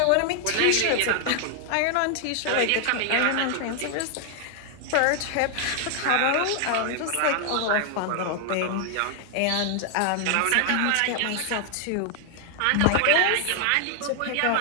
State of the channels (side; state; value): both; different; correlation 0.00